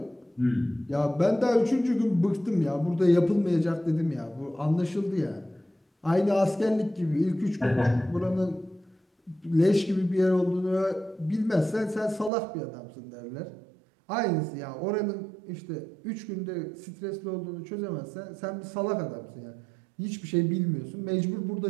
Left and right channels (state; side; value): drops out; left; at 12.3 s